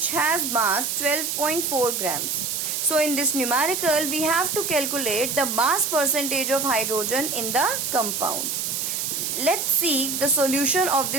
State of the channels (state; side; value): noise; right; hiss, 2 dB below the sound